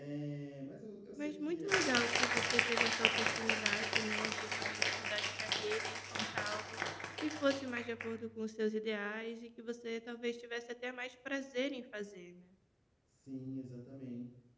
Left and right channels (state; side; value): identical; both; correlation 1.00